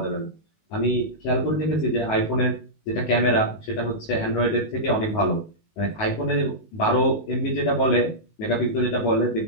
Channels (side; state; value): right; late; 19 ms